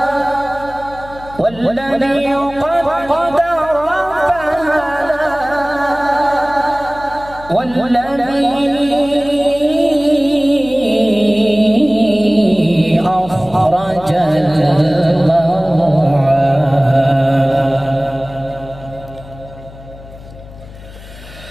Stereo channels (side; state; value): left; noise; hum, 18 dB below the sound